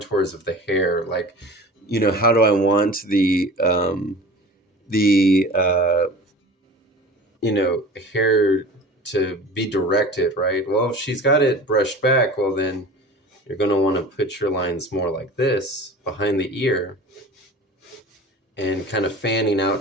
of the hair. Like, how do I want the hair to be directed, right? Well, if she's got it brushed back, well, then you're going to want to put your lines more like this behind the ear and kind of fanning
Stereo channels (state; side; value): normal; both; correlation 0.38